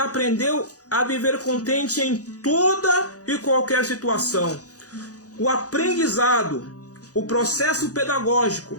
a viver contente em toda e qualquer situação. O aprendizado, o processo pedagógico,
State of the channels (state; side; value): late; right; 0.67 ms